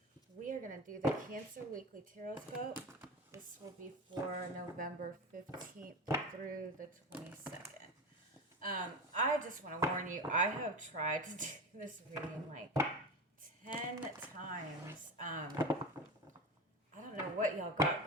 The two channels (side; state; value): both; normal; correlation 0.25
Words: We are going to do the Cancer Weekly Tarotscope. This will be for November 15th through the 22nd. I just want to warn you, I have tried to do this reading like 10 times. I don't know what y'all got